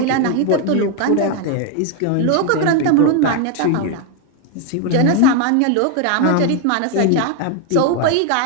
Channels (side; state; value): both; different; correlation 0.00